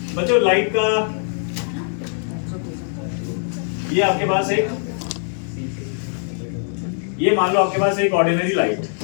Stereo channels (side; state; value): right; silent; 64 dB below the other